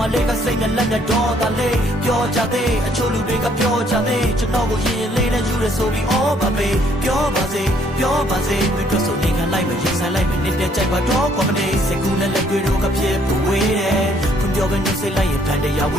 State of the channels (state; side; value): normal; both; correlation 0.65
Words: မလေးကစိတ်နဲ့လက်နဲ့ဒေါသလေးပြောကြသေးအချို့လူတွေကပြောကြသေးကျွန်တော်ကိုရင်လေးနဲ့ယူရဆိုပြီးအော်ပါပဲပြောပါစေမင်းတို့ဆိုနေခံလိုက်မရင်ဆိုင်လိုက်မနစ်တဲ့ကြိုက်ပါတော့ကောမနေစကူနဲ့လက်တွေတော့ကဖြစ်ပဝေးတယ်ဖွံ့ပြောပဲနှုတ်ဆက်လိုက်ရင်ဖန်တရားဝ